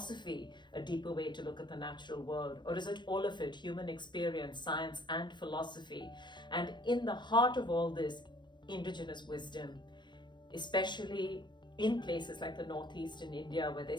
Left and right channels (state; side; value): late; right; 0.22 ms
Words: a deeper way to look at the natural world? Or is it all of it, human experience, science and philosophy? And in the heart of all this, indigenous wisdom, especially in places like the Northeast in India, where